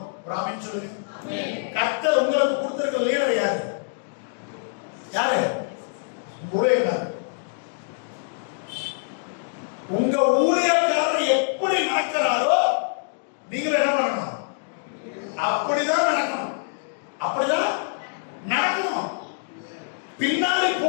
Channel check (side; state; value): right; silent; digital silence